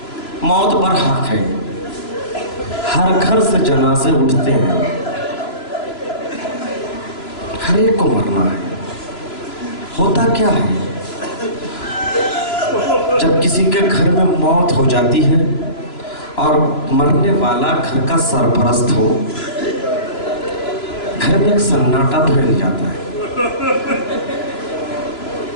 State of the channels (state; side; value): late; right; 3.0 ms